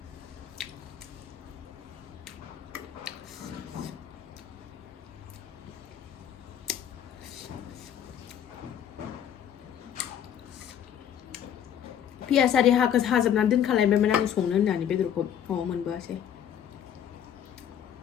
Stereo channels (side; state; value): right; quieter; 9.4 dB